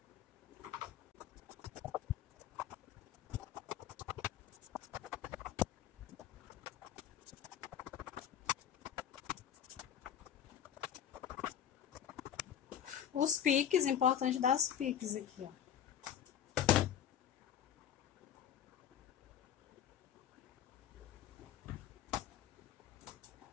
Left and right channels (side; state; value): right; quieter; 9.7 dB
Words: Os piques, importante dar os piques aqui, ó.